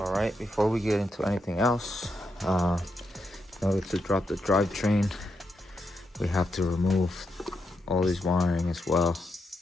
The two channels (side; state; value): both; normal; correlation 0.83